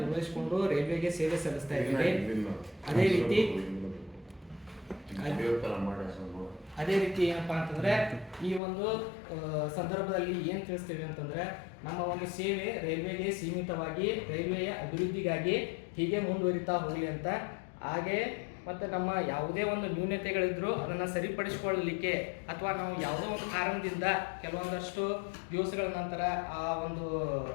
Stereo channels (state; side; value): drops out; right; at 8.6 s